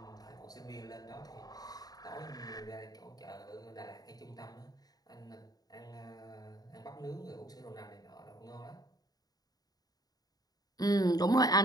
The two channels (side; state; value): right; late; 0.18 ms